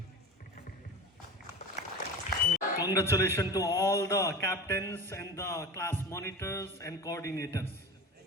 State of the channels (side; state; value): both; normal; correlation 0.30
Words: Congratulations to all the captains and the class monitors and coordinators.